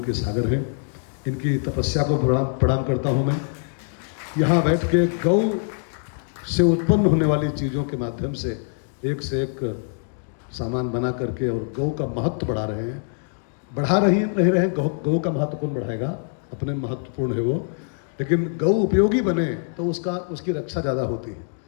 के सागर हैं। इनकी तपस्या को प्रणाम करता हूँ मैं। यहाँ बैठ के गौ से उत्पन्न होने वाली चीज़ों के माध्यम से एक सामान बना करके और गौ का महत्व बढ़ा रहे हैं। बढ़ा रहे हैं गौ का महत्व कौन बढ़ाएगा? अपने महत्वपूर्ण है वो, लेकिन गौ उपयोगी बने तो उसकी रक्षा ज़्यादा होती है।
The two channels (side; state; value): right; silent; 63 dB below the other